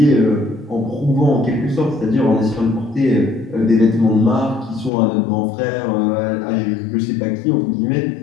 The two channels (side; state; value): right; drops out; at 4.9 s